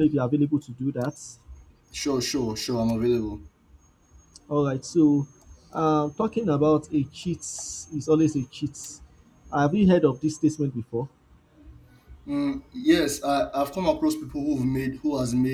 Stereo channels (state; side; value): identical; both; correlation 1.00